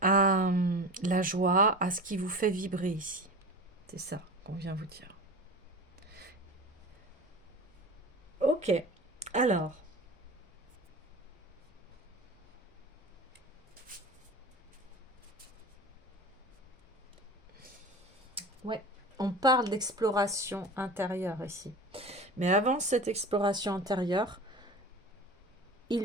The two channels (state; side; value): normal; both; correlation 0.33